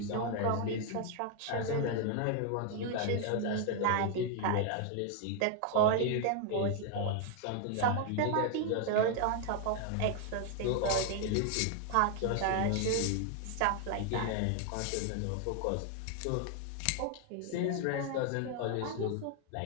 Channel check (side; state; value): both; different; correlation 0.00